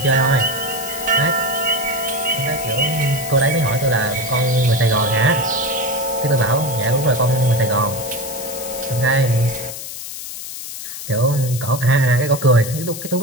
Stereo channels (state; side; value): noise; left; hiss, 9 dB below the sound